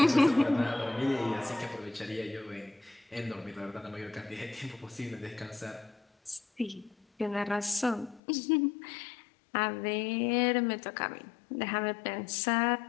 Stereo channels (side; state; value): right; drops out; at 8.2 s